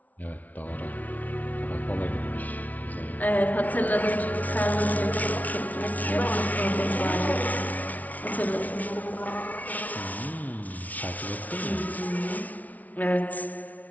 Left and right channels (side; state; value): right; late; 0.073 ms